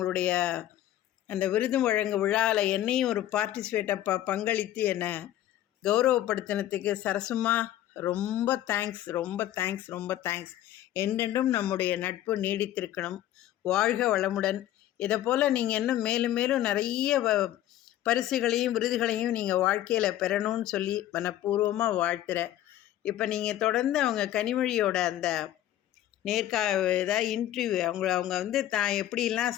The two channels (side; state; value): right; quieter; 13.1 dB